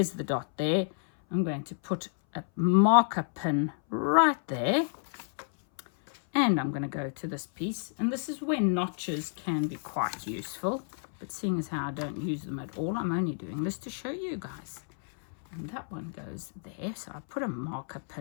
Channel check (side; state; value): right; silent; 58 dB below the other